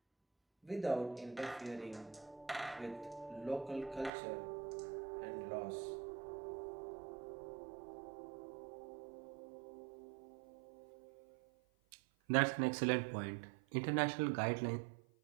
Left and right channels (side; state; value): left; drops out; at 4.1 s